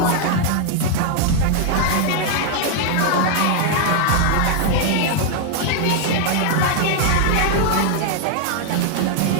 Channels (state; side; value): different; both; correlation 0.00